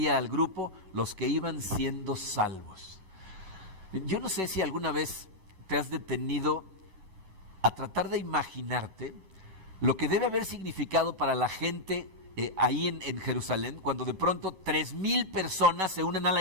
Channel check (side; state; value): left; late; 11 ms